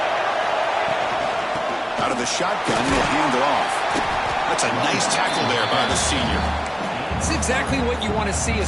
Out of the shotgun, he'll hand it off. That's a nice tackle there by the senior. It's exactly what you want to see as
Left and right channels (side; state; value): both; identical; correlation 1.00